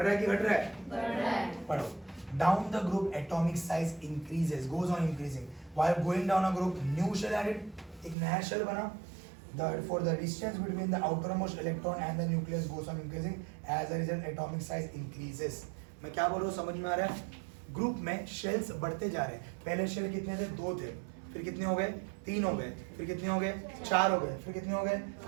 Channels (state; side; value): drops out; left; at 8.2 s